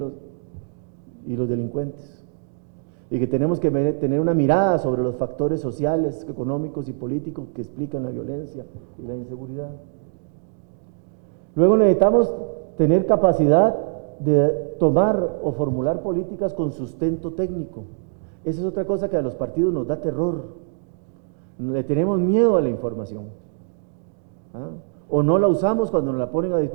los delincuentes, y que tenemos que tener una mirada sobre los factores sociales, económicos y políticos que explican la violencia y la inseguridad. Luego necesitamos tener capacidad de tomar o formular políticas con sustento técnico. Esa es otra cosa que a los partidos nos da terror. Le tenemos miedo a la información, o no la usamos cuando nos la ponen a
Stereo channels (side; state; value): left; silent; digital silence